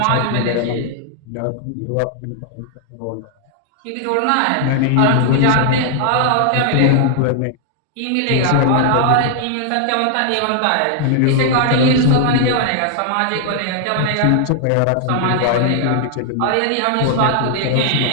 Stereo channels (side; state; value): both; different; correlation 0.00